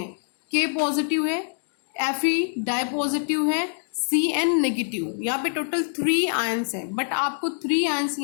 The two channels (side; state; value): right; silent; digital silence